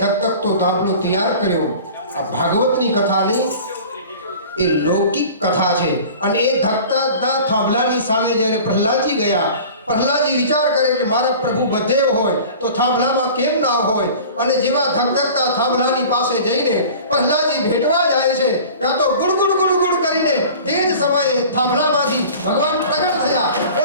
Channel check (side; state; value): both; inverted; correlation -0.41